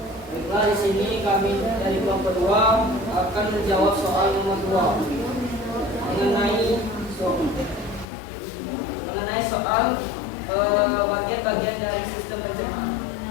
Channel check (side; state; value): right; drops out; at 8.1 s